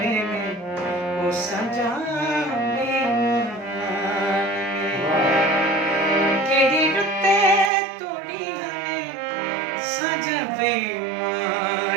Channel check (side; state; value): left; drops out; at 7.7 s